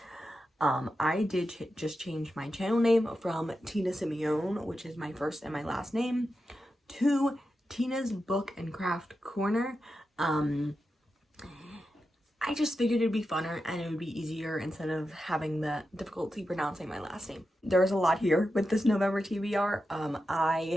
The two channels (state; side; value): normal; both; correlation 0.90